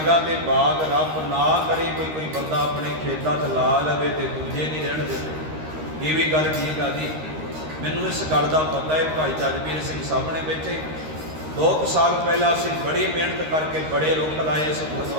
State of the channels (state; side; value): late; left; 13 ms